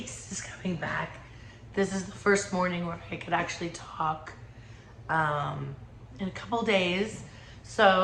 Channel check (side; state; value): both; identical; correlation 1.00